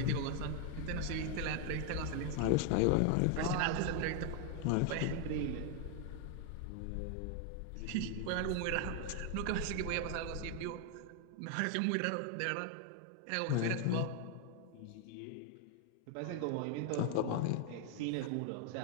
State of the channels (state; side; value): different; both; correlation 0.00